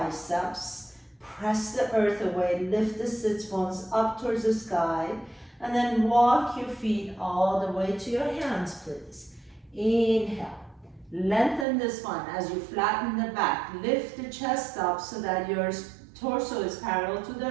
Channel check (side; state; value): left; drops out; at 11.7 s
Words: Press the earth away. Lift the sits bones up towards the sky. And then walk your feet all the way to your hands, please. Inhale. Lengthen the spine as you flatten the back. Lift the chest up so that your torso is parallel to